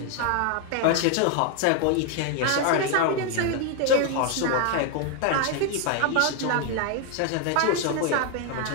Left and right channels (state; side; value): different; both; correlation 0.01